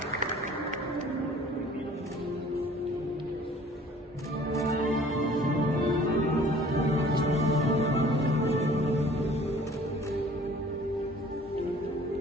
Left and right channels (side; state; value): both; normal; correlation 0.51